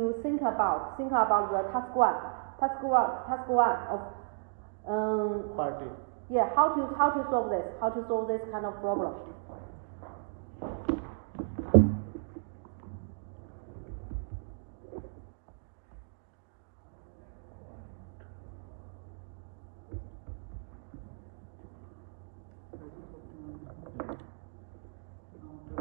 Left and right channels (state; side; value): silent; left; digital silence